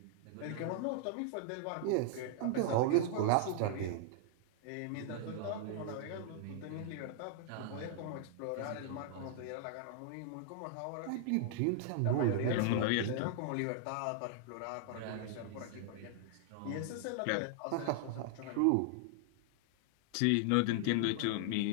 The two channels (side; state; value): both; different; correlation -0.01